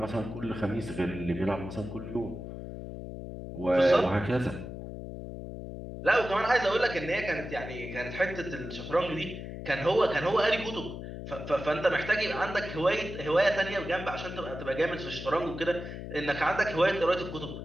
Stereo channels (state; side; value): noise; left; hum, 9 dB below the sound